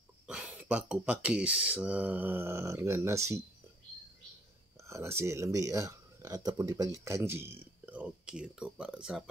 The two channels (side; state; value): both; normal; correlation 0.63